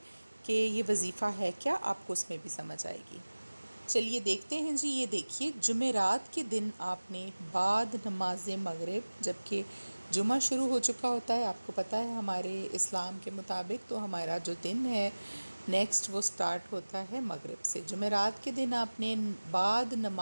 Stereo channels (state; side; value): inverted; both; correlation -1.00